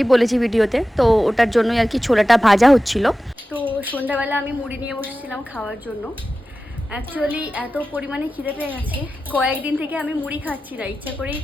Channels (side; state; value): both; normal; correlation 0.94